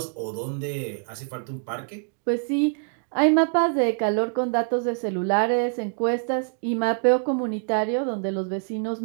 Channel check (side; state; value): left; silent; 62 dB below the other